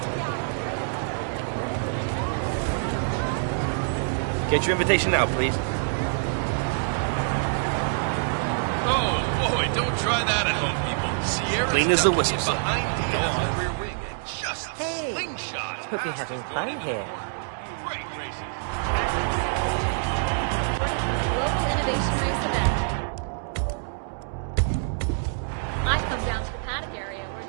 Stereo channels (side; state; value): left; silent; digital silence